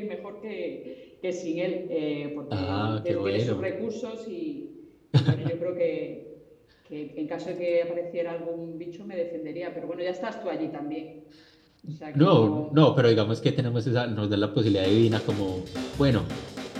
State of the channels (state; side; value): identical; both; correlation 1.00